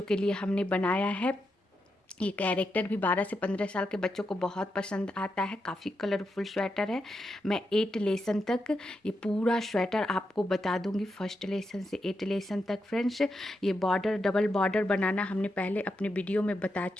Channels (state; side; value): normal; both; correlation 0.85